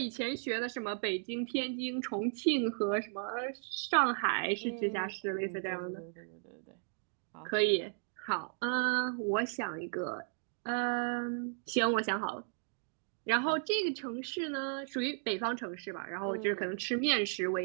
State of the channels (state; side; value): silent; left; digital silence